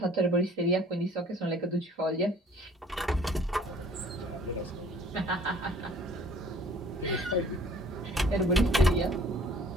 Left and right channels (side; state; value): both; normal; correlation 0.54